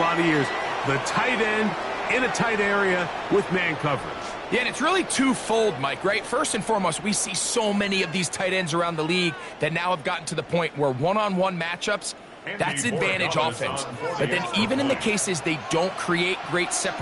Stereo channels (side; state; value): both; identical; correlation 1.00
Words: of years. The tight end in a tight area with man coverage. Yeah, and it's really twofold, Mike, right? First and foremost, we see so many of these tight ends around the league that now have gotten to the point where one-on-one matchups, that's advantage offense. But then even in the cases they don't create great